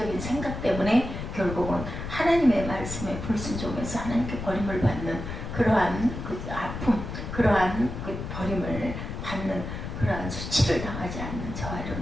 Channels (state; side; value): noise; left; rumble, 7 dB below the sound